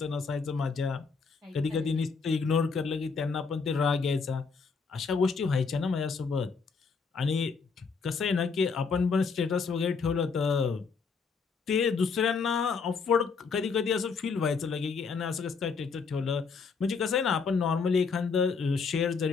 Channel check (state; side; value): quieter; right; 5.1 dB